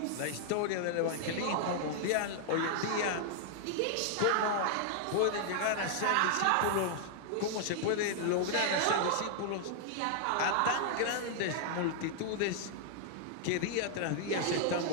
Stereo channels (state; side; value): different; both; correlation 0.00